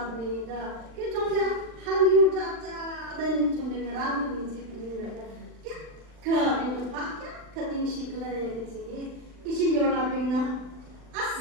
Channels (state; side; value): late; left; 39 ms